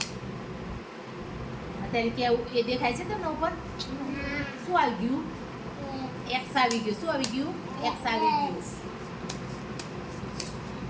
અત્યારે કેવું એ દેખાય છે તમને ઉપર શું આવી ગયું, એક્સ આવી ગયું. શું આવી ગયું, એક્સ આવી ગયું.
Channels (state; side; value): identical; both; correlation 1.00